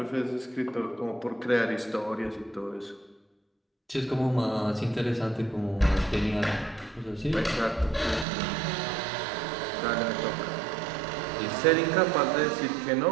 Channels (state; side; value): drops out; left; at 8.2 s